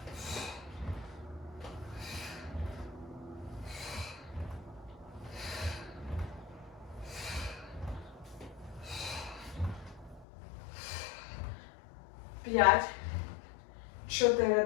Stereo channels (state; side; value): drops out; right; at 10.2 s